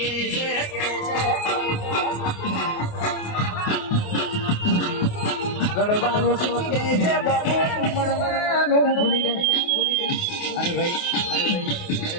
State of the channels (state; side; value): late; right; 28 ms